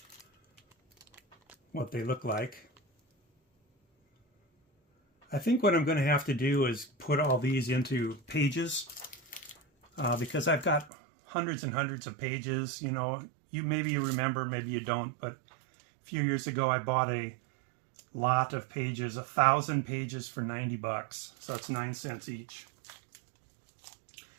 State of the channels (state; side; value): drops out; left; at 10.9 s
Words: what they look like. I think what I'm going to have to do is put all these into pages because I've got hundreds and hundreds of pages. You know, maybe you remember, maybe you don't, but a few years ago I bought a lot of pages, 1,000 pages for $90, so that's 9 cents each.